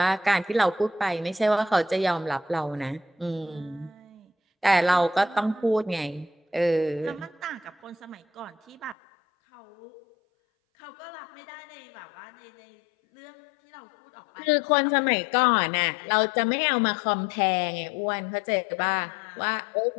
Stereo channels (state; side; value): drops out; right; at 9.0 s